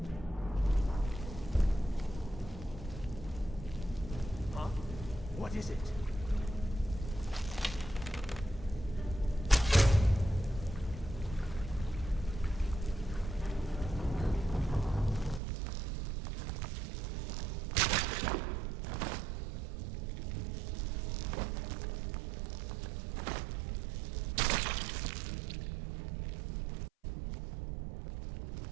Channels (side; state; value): left; drops out; at 15.4 s